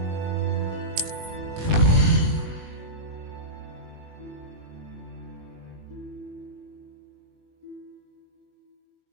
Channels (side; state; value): left; late; 19 ms